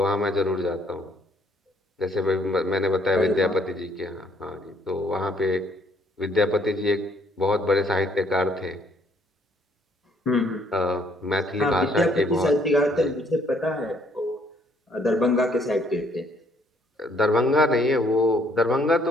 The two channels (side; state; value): both; normal; correlation 0.65